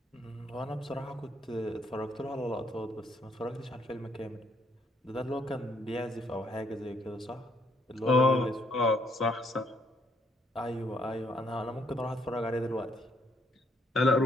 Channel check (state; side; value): normal; both; correlation 0.70